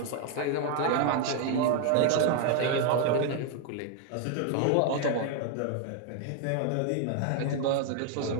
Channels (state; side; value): different; both; correlation 0.00